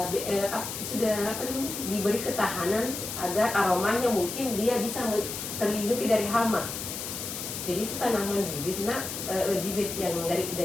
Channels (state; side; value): noise; left; hiss, 6 dB below the sound